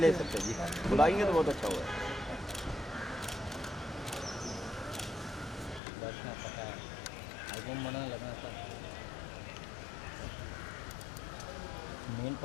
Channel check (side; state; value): right; drops out; at 5.8 s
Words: ले सकते हैं जी, बुलाएंगे तो बहुत अच्छा होगा। पता है album बनाने लगना था मेन